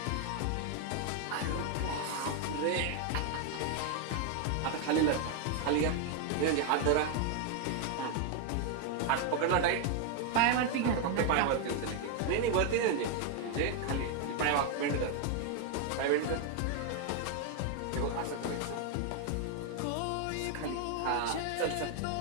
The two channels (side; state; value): both; different; correlation 0.01